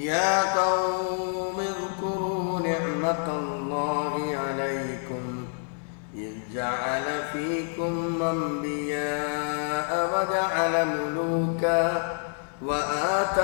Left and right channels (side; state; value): right; silent; digital silence